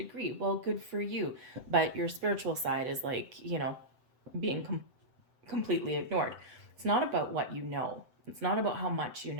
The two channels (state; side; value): late; left; 7.8 ms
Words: Well, good for you. But your spiritual side is like, being completely ignored. It's not about what you know. It's not about how much you